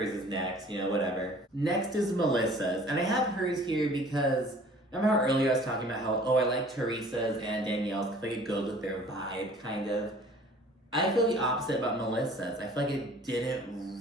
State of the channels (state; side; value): normal; both; correlation 0.50